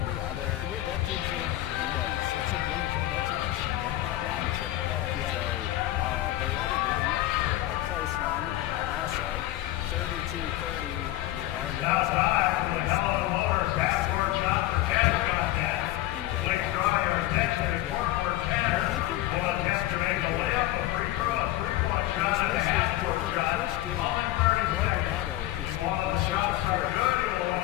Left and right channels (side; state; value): right; quieter; 15.9 dB